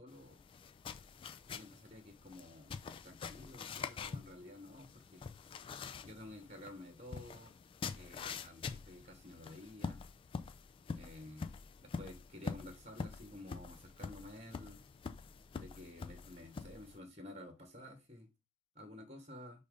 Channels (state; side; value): quieter; right; 4.1 dB